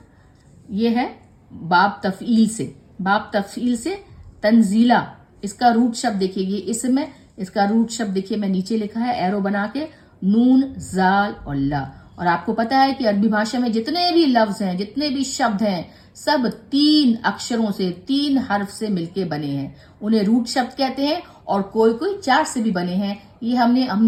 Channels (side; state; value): both; identical; correlation 1.00